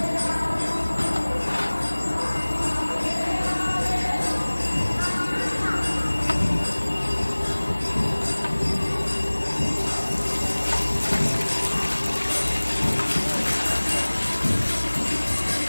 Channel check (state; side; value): inverted; both; correlation -1.00